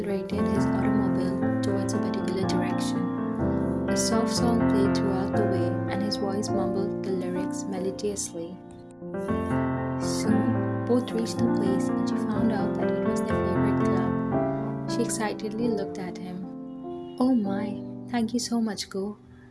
his automobile towards a particular direction. A soft song played throughout the way, and his voice mumbled the lyrics melodiously. Soon, both reached the place, and she found out that it was their favorite club. She excitedly looked at him. Oh my, thank you so much, Go.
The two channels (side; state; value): both; identical; correlation 1.00